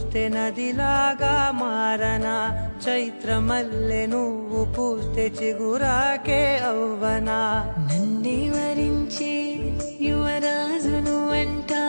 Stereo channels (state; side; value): inverted; both; correlation -1.00